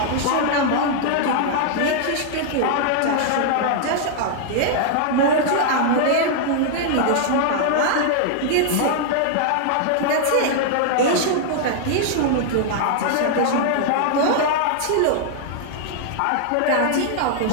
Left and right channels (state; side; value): different; both; correlation -0.01